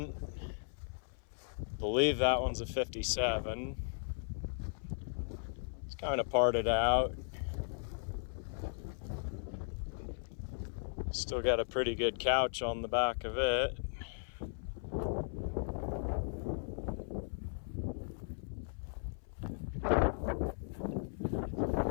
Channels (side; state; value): right; silent; 53 dB below the other